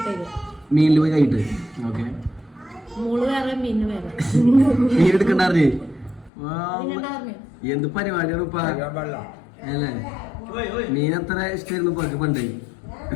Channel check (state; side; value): drops out; right; at 6.3 s